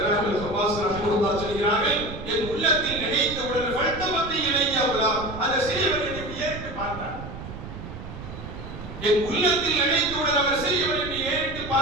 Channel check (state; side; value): noise; right; rumble, 11 dB below the sound